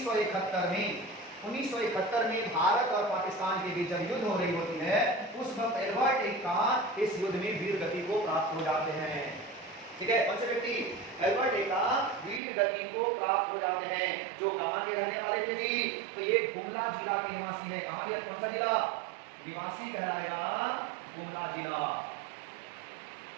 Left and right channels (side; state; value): left; drops out; at 12.4 s